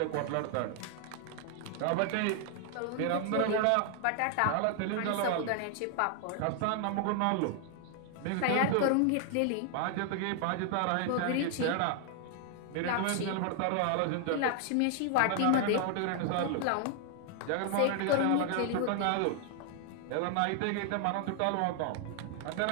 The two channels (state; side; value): different; both; correlation 0.00